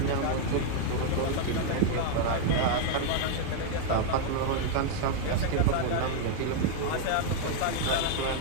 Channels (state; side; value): different; both; correlation 0.00